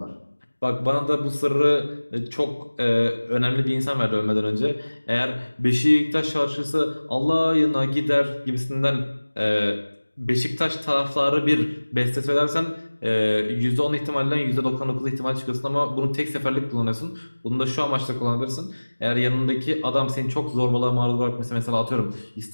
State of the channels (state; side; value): inverted; both; correlation -1.00